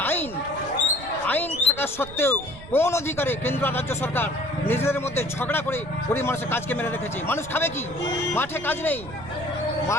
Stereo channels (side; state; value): right; noise; rumble, 15 dB below the sound